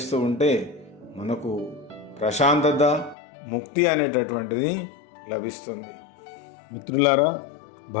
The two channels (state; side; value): drops out; right; at 3.2 s